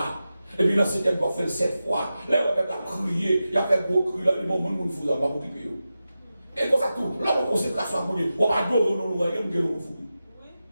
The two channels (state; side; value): inverted; both; correlation -0.92